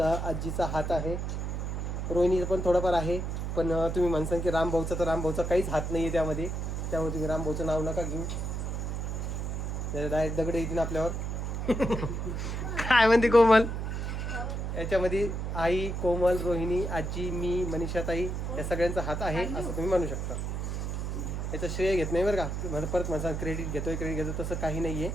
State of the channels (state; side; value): noise; right; hum, 3 dB below the sound